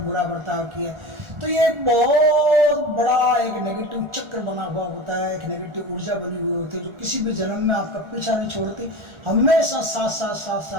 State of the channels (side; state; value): left; late; 1.4 ms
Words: बर्ताव किया है। तो ये एक बहुत बड़ा एक नेगेटिव चक्र बना हुआ होता है, एक नेगेटिव ऊर्जा बनी हुई होती है जो किसी भी जन्म में आपका पीछा नहीं छोड़ती, हमेशा साथ साथ साथ